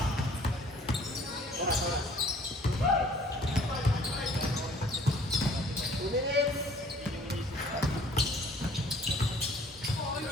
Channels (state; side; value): normal; both; correlation 0.56